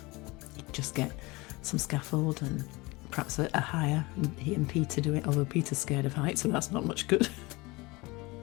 He'd just get some scaffold and perhaps a hire, and he and Peter do it, although Peter's scared of heights, so that's not much good.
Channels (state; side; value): quieter; right; 23.4 dB